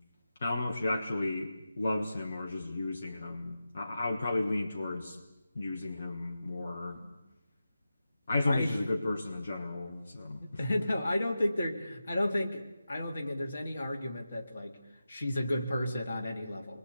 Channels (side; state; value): both; inverted; correlation -0.91